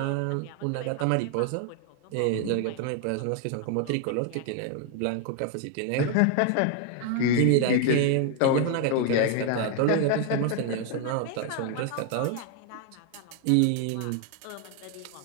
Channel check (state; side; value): different; both; correlation 0.00